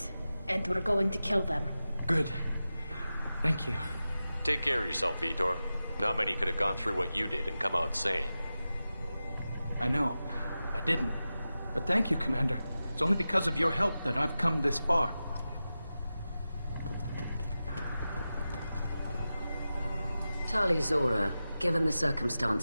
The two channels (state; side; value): inverted; both; correlation -0.93